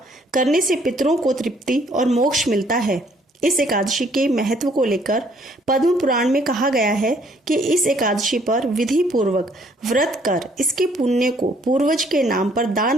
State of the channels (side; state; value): both; normal; correlation 0.64